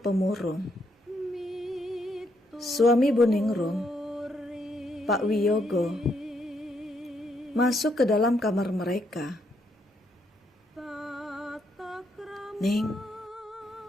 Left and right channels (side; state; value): both; normal; correlation 0.75